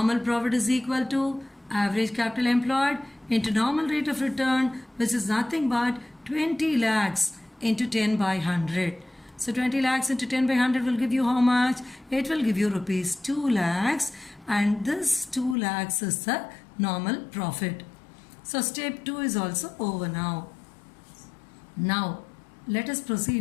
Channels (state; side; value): drops out; right; at 15.6 s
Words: profit is equal to average capital employed into normal rate of return, which is nothing but 20 lakhs into 10 by 100. So 20 lakhs into 10 by 100 will give you how much? It will give you rupees 2 lakhs, and this 2 lakhs is the normal profit. So step 2 is also over now. Now let us